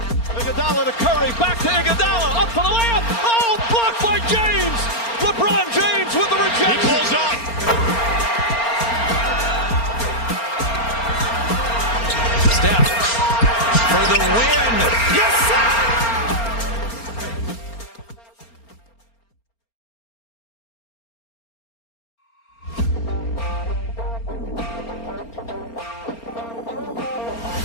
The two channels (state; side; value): late; right; 4.3 ms